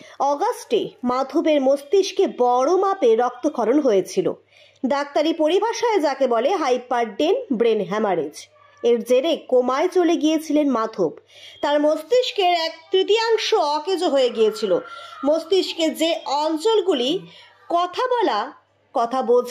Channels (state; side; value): identical; both; correlation 1.00